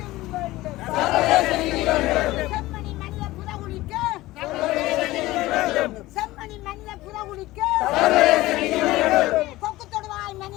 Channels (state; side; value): quieter; right; 18.0 dB